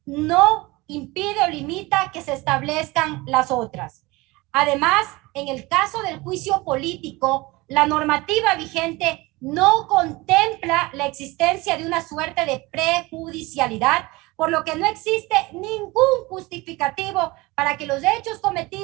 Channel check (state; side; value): quieter; left; 22.4 dB